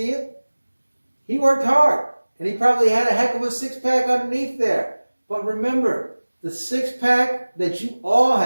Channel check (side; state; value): both; inverted; correlation -1.00